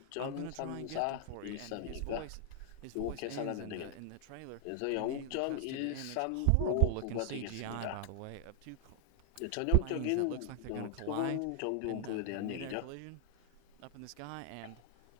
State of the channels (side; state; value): both; different; correlation 0.00